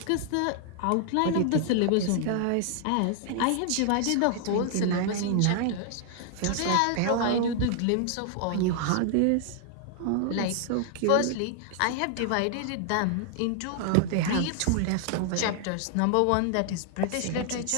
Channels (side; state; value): both; different; correlation 0.00